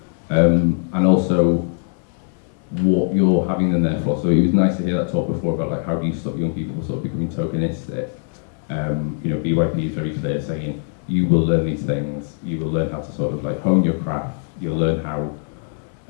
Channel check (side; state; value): right; silent; 57 dB below the other